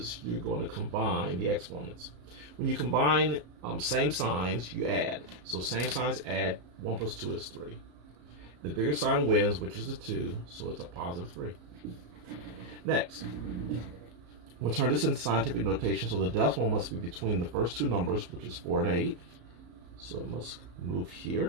you're going to combine the exponents. When you combine same signs, you add. So same signs add, 1 plus 2 is 3. The bigger sign wins, which is the 2, so it's a positive 3. Next, we'll turn this into scientific notation, so the decimal must be between the first two numbers, which is 4 and 8. So it must move here.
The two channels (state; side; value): late; left; 34 ms